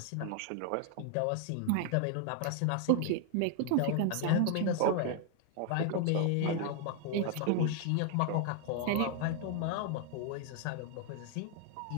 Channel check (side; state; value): both; different; correlation 0.00